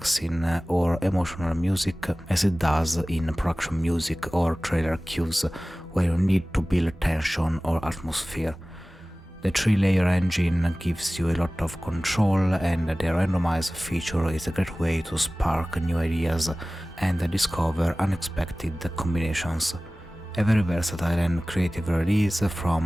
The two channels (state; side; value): normal; both; correlation 0.98